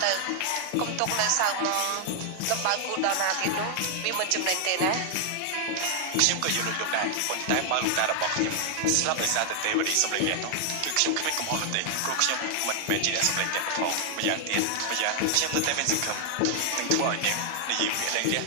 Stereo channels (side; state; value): both; different; correlation 0.00